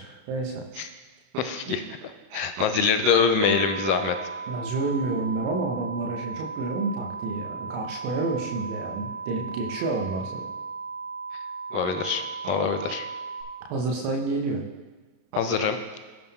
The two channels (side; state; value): left; late; 32 ms